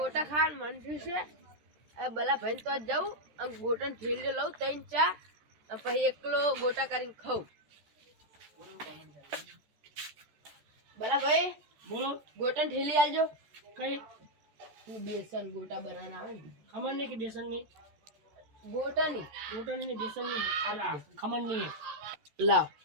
ખાવાનું મન થયું છે. બલા ભાઈ તો જાઉં અને ગોટા ઠેલી લઉં 3-4 પછી એકલો ગોટા કરીને ખાઉં. બલા ભાઈ બોલો. ગોટા ઠેલી આલજો. કઈ બેસન ગોટા બનાવવાના આવે ને. ખમણ ની કે બેસન ની? ગોટાની. ગોટાની ને બેસન ની. આ ખમણ ની લાવ.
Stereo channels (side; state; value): left; late; 14 ms